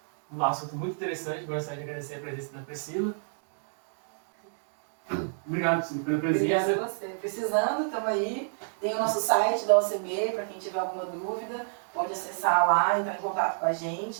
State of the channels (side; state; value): left; silent; digital silence